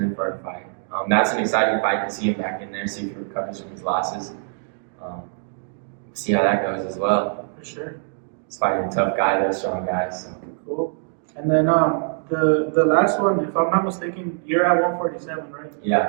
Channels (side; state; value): left; silent; digital silence